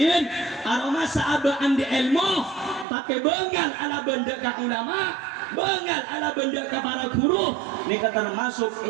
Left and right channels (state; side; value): drops out; left; at 2.9 s